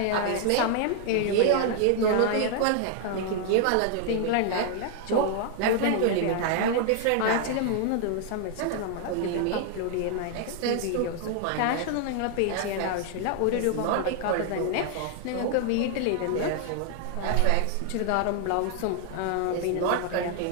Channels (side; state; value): both; different; correlation 0.00